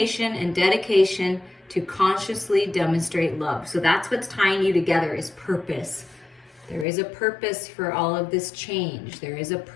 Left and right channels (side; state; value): right; drops out; at 6.9 s